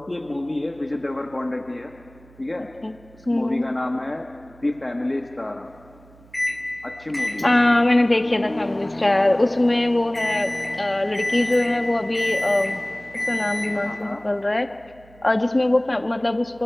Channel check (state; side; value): noise; right; hum, 25 dB below the sound